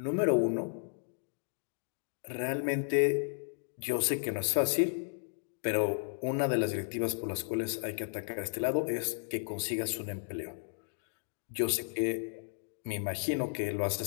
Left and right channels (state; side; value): silent; right; digital silence